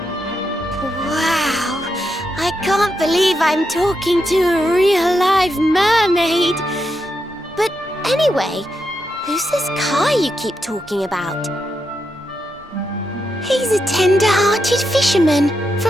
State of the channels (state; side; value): normal; both; correlation 0.84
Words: Wow, I can't believe I'm talking to a real live mermaid. But anyway, who's this Kai you keep talking about? He's a tender-hearted fisherman